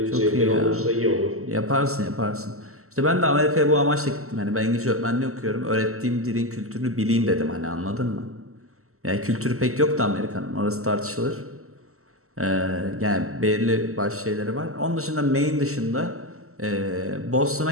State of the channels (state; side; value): late; left; 0.63 ms